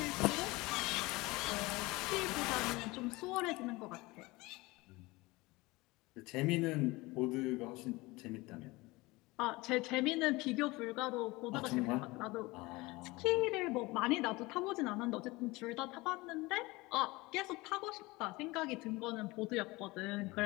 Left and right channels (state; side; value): quieter; right; 22.2 dB